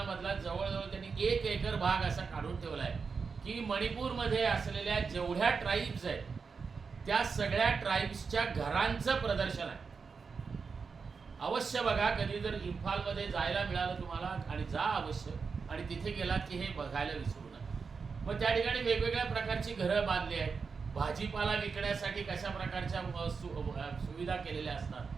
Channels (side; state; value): left; quieter; 5.2 dB